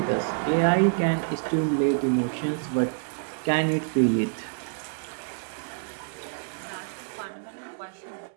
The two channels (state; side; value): silent; left; digital silence